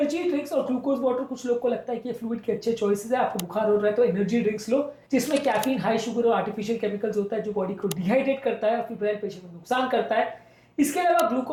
ड्रिंक्स और ग्लूकोज वाटर, कुछ लोग को लगता है कि ये फ्लूइड के अच्छे चॉइसेस है। आपको बुखार हो रहा है तो एनर्जी ड्रिंक्स लो जिसमें कैफीन, हाई शुगर और आर्टिफिशियल केमिकल्स होता है जो बॉडी को डिहाइड्रेट करता है और फिब्राइल पेशेंट में नुकसान करता है। इसके अलावा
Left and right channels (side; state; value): both; identical; correlation 1.00